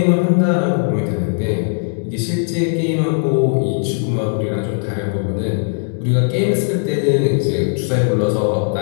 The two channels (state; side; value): silent; right; 67 dB below the other